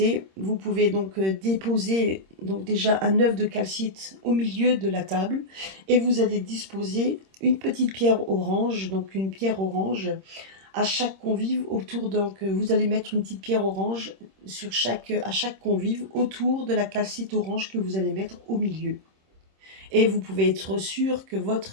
vous pouvez donc déposer donc déjà un œuf de calcite au milieu de la table et vous allez disposer une petite pierre orange, donc une pierre orange à chaque convive autour. Donc, vous allez mettre une petite pierre orange à chaque convive autour de la calcite orange que vous allez mettre au milieu. et vous pouvez être sûr que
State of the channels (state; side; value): late; left; 26 ms